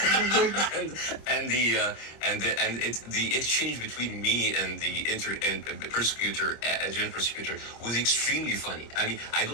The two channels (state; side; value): late; right; 26 ms